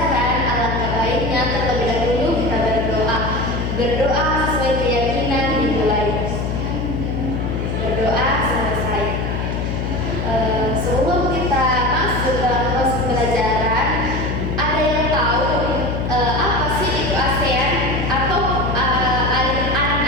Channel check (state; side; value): noise; left; hum, 1 dB below the sound